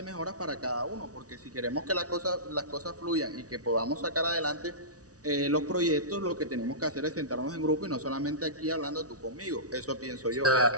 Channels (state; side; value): late; left; 0.67 ms